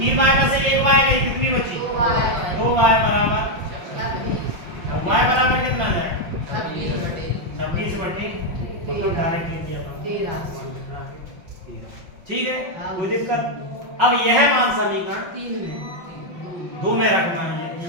में से 1y गई, कितनी बची? 2y बराबर, y बराबर कितना जाएगा? 26 बटे मतलब डायरेक्ट ले दिया 13। ठीक है, कोई दिक्कत? अब यह मान समीकरण 2 में रखना है।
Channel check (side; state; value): left; late; 5.6 ms